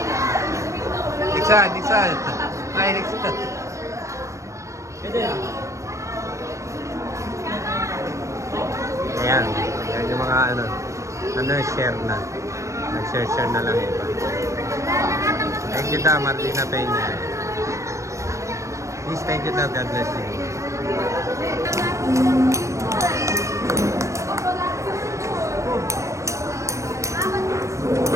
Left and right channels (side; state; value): left; late; 0.15 ms